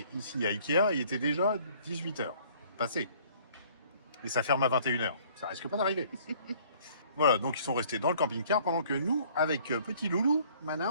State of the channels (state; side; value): inverted; both; correlation -0.56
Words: ici à Ikea, il était déjà 18 heures passé. Et ça ferme à 21 heures. Ça risque pas d'arriver. Voilà, donc ils sont restés dans le camping-car pendant que nous, avec petit loulou,